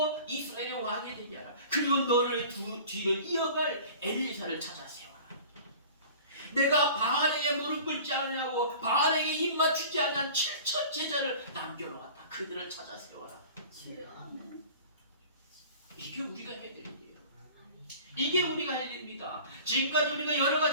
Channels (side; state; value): both; inverted; correlation -0.42